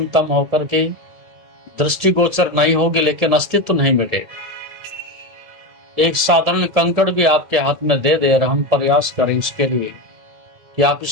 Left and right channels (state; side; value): late; left; 1.7 ms